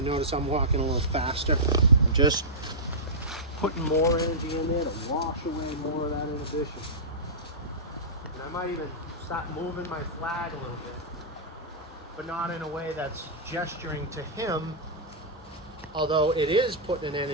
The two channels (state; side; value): normal; both; correlation -0.15